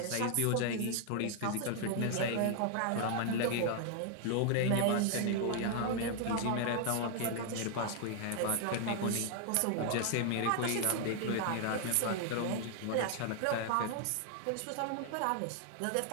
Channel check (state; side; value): different; both; correlation 0.00